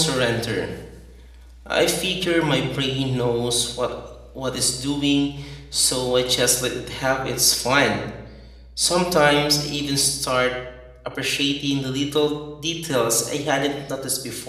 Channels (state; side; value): identical; both; correlation 1.00